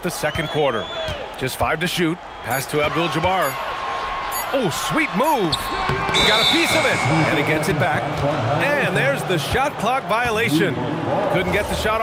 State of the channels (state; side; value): identical; both; correlation 1.00